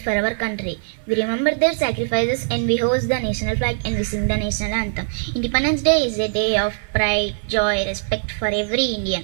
for our country. We remember their sacrifices and we hoist the national flag and we sing the national anthem. Independence Day is a day of pride, joy, respect for every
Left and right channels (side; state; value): left; silent; 59 dB below the other